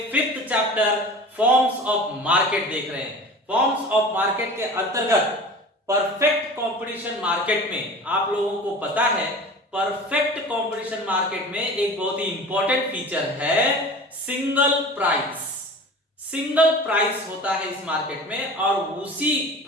5th chapter forms of market देख रहे हैं। Forms of market के अंतर्गत perfect competition market में आप लोगों को पता है, परफेक्ट कंपटीशन मार्केट में एक बहुत ही इंपॉर्टेंट फीचर है सिंगल प्राइस। सिंगल प्राइस होता है इस मार्केट में और उसी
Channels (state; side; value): normal; both; correlation 0.38